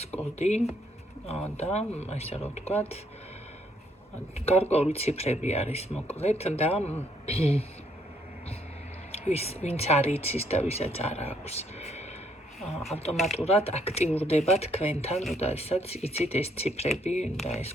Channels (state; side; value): normal; both; correlation 0.70